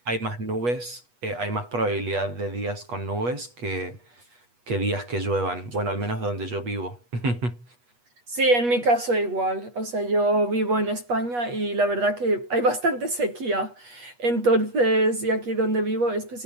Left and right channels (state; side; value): late; left; 8.3 ms